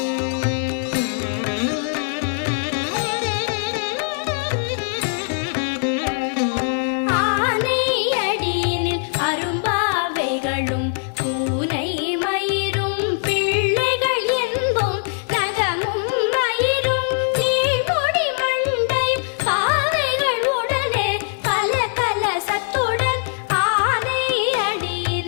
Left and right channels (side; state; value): right; silent; 65 dB below the other